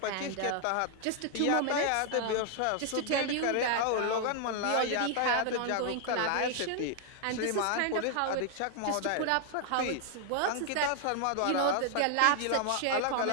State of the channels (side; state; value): both; different; correlation 0.00